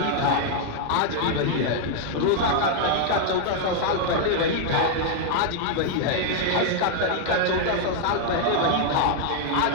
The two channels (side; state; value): both; different; correlation 0.00